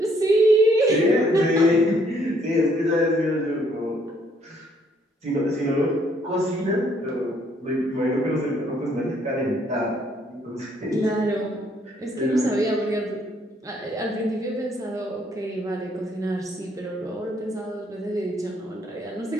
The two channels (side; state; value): both; normal; correlation 0.67